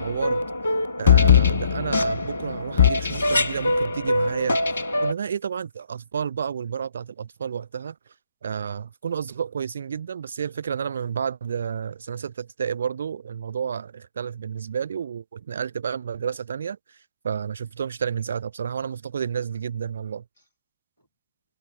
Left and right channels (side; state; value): both; inverted; correlation -0.66